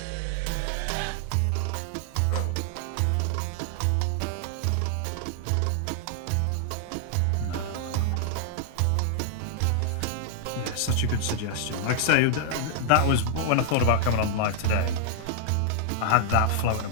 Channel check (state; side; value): different; both; correlation -0.01